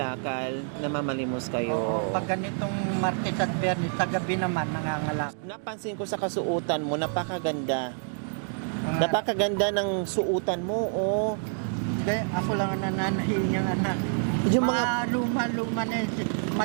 namamalimos kayo. Oo, pag ganitong Martes at Bernes, sa gabi naman, nangangalak. Napansin ko sa kasuotan mo, napakaganda. Napakaganda ng suotan mo, oh. Hindi, ako lang ang nananahin niyang anak. Yung mga, Luma-luma na yun,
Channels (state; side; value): silent; left; 60 dB below the other